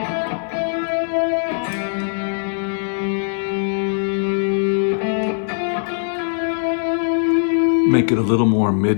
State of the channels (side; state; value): right; silent; 59 dB below the other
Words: Make it a little more